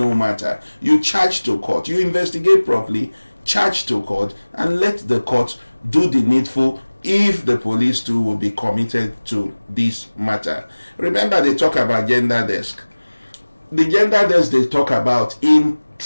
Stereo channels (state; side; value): inverted; both; correlation -1.00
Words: matter. You charge to court, you investigate properly, charge to court, and let the court do the needful if the police too will be committed to this matter. Remember, they talk about gender desk. The gender desk they talk about, in